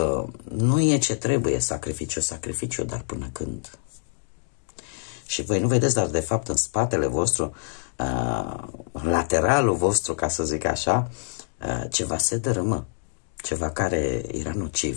nu e ce trebuie, sacrificiu, dar până când? Și voi nu vedeți, dar de fapt în spatele vostru, în lateralul vostru, ca să zic așa, ceva se dărâmă, ceva care era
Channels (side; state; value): right; silent; digital silence